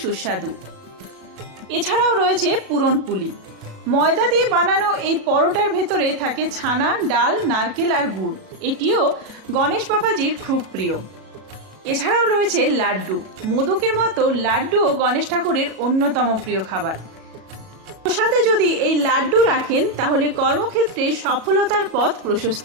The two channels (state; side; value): late; left; 37 ms